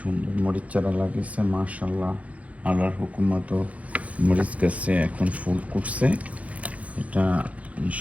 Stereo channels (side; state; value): left; late; 0.067 ms